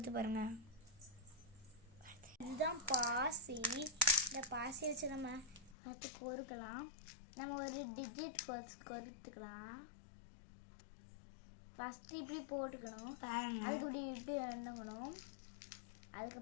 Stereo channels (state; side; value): drops out; right; at 5.8 s